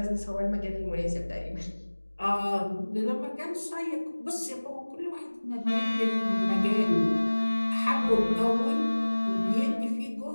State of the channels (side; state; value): both; inverted; correlation -1.00